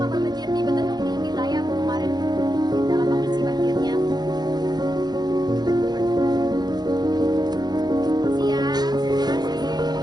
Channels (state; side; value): late; left; 0.20 ms